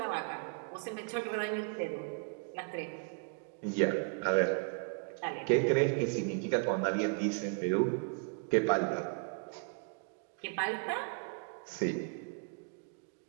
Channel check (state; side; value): quieter; left; 39.0 dB